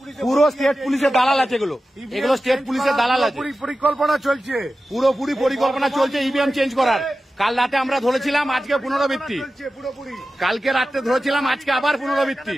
পুরো স্টেট পুলিশের দালাল আছে। এগুলো স্টেট পুলিশের দালাল আছে। পরিকল্পনা চলছে, পুরোপুরি পরিকল্পনা চলছে ইভিএম চেঞ্জ করার। কাল রাতে আমরা ধরেছিলাম, আজকে পুনরাবৃত্তি। কালকে রাতে ধরেছিলাম, আজকে আবার পুনরাবৃত্তি।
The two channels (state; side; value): normal; both; correlation 0.94